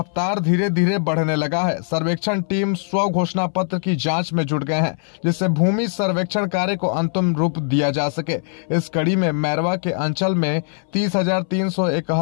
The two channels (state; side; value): silent; right; 61 dB below the other